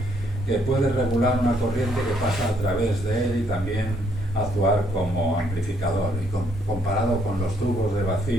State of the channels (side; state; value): both; normal; correlation 0.69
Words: que puede regular una corriente que pasa a través de él y también actuar como amplificador. Y comparado con los tubos de